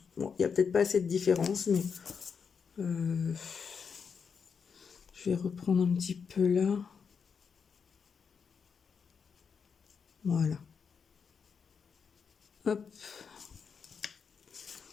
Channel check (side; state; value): right; quieter; 6.2 dB